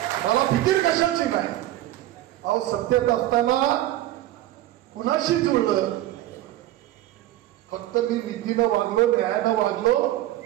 मला फिकीर कशाची नाही. अहो सत्तेत असताना कुणाशी जुळलं. फक्त मी नीतीनं वागलो, न्यायानं वागलो,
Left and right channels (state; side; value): quieter; left; 14.6 dB